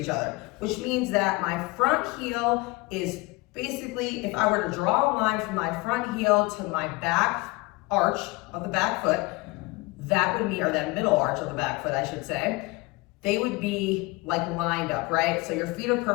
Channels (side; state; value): right; quieter; 24.0 dB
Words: other, which means that my front heel is basically, if I were to draw a line from my front heel to my back arch of the back foot, that would mean, or that middle arch of the back foot, I should say, they would be like lined up, right? So your feet are